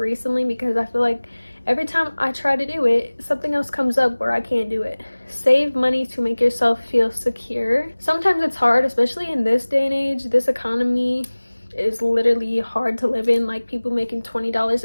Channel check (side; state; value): both; inverted; correlation -1.00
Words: because I feel like every time I try to do it, something else comes up where I can't do it. Save money to make yourself feel secure. Sometimes it's hard, especially in this day and age. This economy is literally hard to live in. Like, people making $20